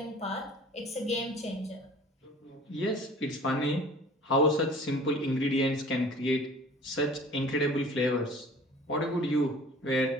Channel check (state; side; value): normal; both; correlation 0.47